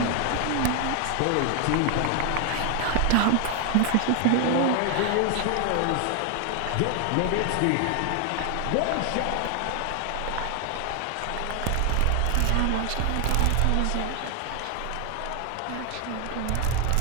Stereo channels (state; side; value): different; both; correlation 0.00